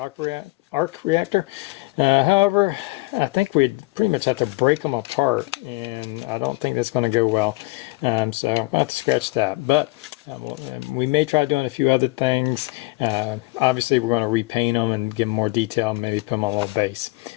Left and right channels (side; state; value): right; quieter; 23.2 dB